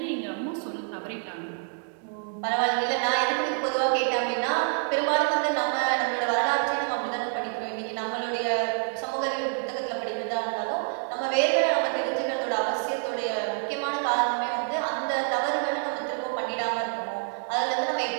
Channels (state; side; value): silent; left; 55 dB below the other